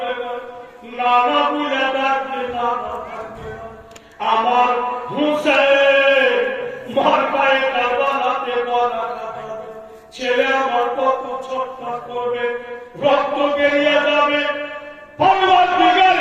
না, নানা বইলা ডাকবে নানা থাকবে না। আমার হুসেন মার পায়ে কারবালাতে গলা কাটাবে, ছেলে আমার কত ছটফট করবে, রক্ত বেরিয়ে যাবে।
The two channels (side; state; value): both; identical; correlation 1.00